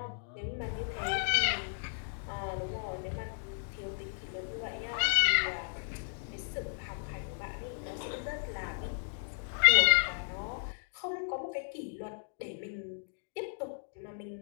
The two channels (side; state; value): right; silent; digital silence